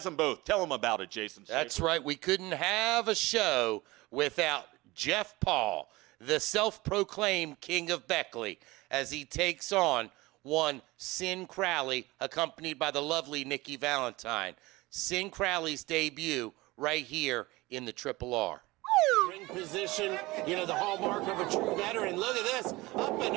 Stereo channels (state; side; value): quieter; left; 21.1 dB